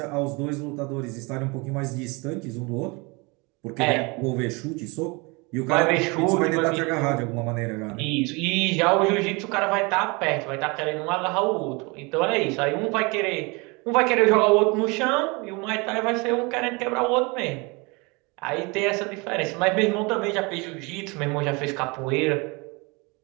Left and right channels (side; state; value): left; quieter; 27.9 dB